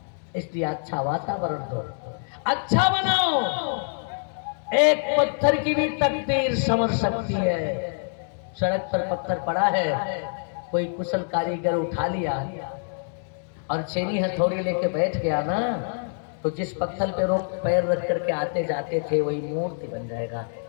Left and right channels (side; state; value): right; silent; digital silence